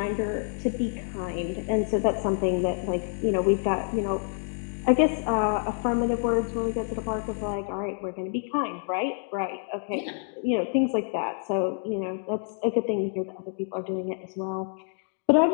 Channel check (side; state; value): right; silent; 60 dB below the other